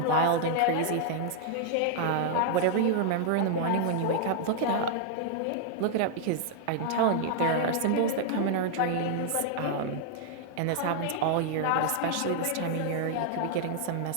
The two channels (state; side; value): different; both; correlation -0.01